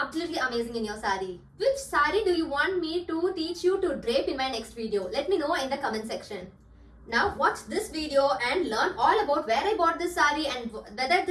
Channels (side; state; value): both; identical; correlation 1.00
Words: amazing in your saree. Which saree do you want me to teach you to drape in my next video? Let me know in the comment section. Now watch this video and learn all about where I bought this saree and whether